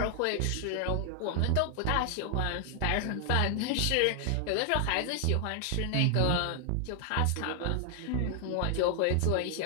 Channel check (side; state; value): both; different; correlation 0.00